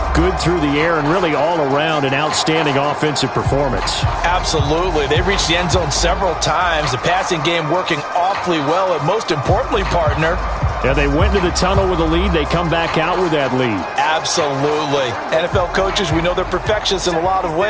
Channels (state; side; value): identical; both; correlation 1.00